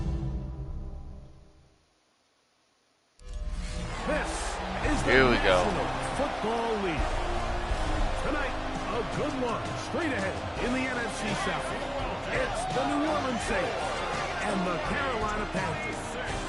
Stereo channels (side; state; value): both; identical; correlation 1.00